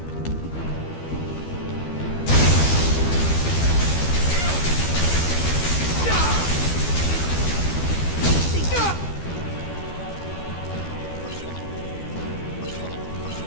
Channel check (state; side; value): late; right; 12 ms